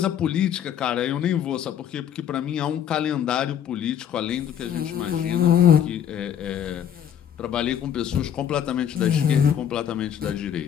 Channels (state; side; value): quieter; right; 9.3 dB